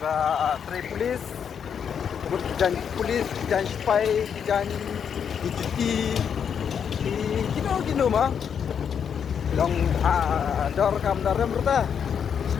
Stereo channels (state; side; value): quieter; right; 7.6 dB